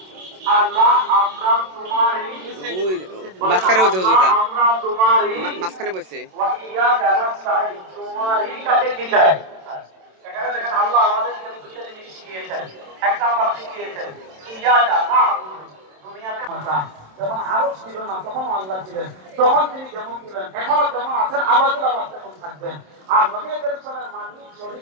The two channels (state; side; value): late; left; 27 ms